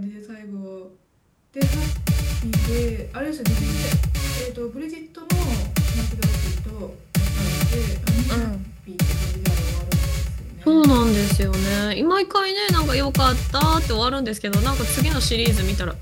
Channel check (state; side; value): identical; both; correlation 1.00